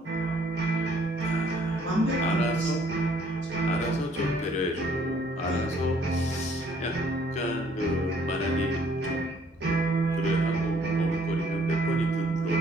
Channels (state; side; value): normal; both; correlation 0.62